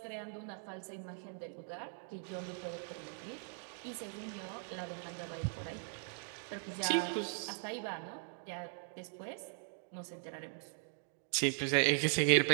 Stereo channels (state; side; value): silent; left; 51 dB below the other